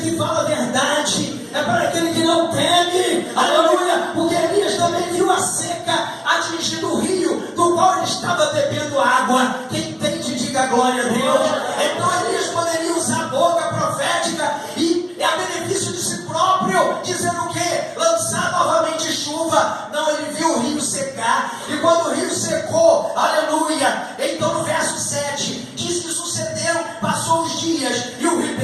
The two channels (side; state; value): both; identical; correlation 1.00